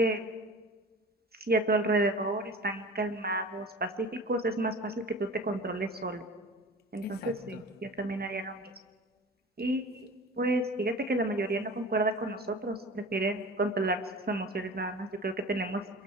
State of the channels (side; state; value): both; normal; correlation 0.38